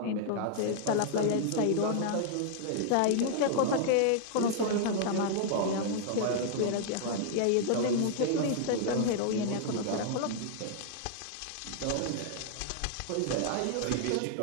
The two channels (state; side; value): different; both; correlation -0.01